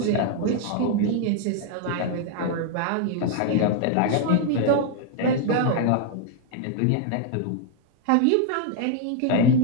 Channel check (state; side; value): different; both; correlation 0.00